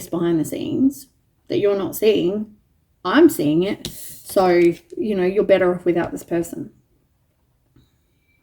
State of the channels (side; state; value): both; identical; correlation 1.00